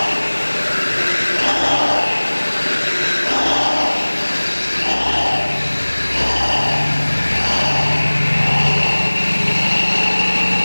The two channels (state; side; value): inverted; both; correlation -1.00